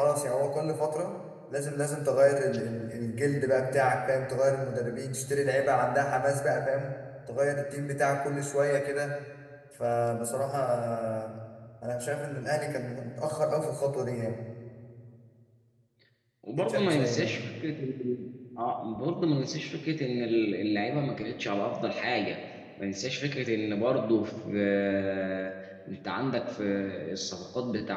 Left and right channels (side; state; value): both; identical; correlation 1.00